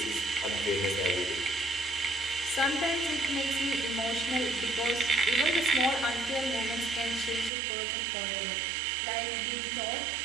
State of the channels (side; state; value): left; drops out; at 7.5 s